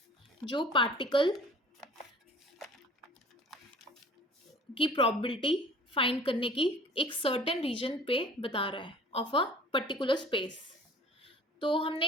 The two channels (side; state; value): both; normal; correlation 0.46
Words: जो पार्टिकल की प्रोबेबिलिटी फाइंड करने की एक सर्टेन रीजन पे बता रहा है ऑफ अ पर्टिकुलर स्पेस। तो